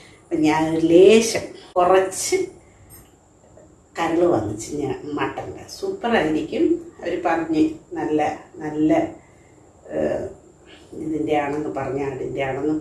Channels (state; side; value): identical; both; correlation 1.00